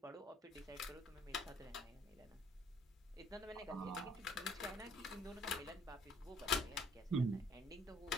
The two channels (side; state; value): both; normal; correlation 0.60